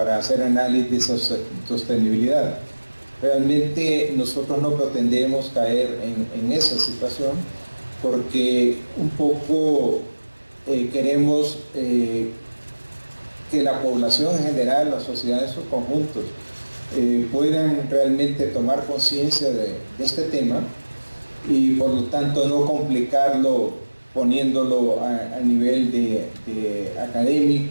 hacer análisis de sostenibilidad. Realmente nosotros no pretendemos caer en esa situación porque un poco queremos que la población en general, la sociedad en sus conjuntos, puedan realmente tomar conciencia de este tema y por lo tanto no complicarlo poniéndolo a nivel de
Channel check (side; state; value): both; inverted; correlation -1.00